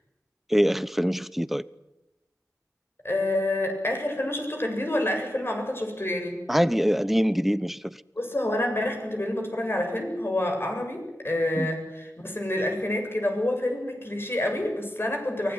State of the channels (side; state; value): both; normal; correlation 0.90